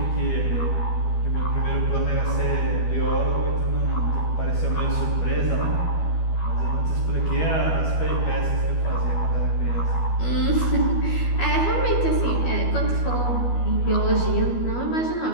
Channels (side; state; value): right; late; 12 ms